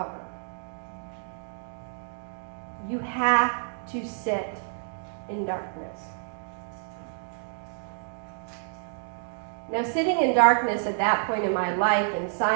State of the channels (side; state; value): left; silent; digital silence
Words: You have to sit in darkness. Now, sitting in darkness at that point in my life, in